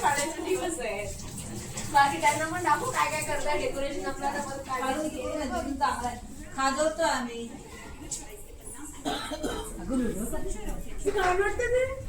दिवस आहे. बाकी त्यांना पण दाखवू काय काय करताय डेकोरेशन. आपल्याला पण काय खाजवतो आम्ही.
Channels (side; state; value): both; identical; correlation 1.00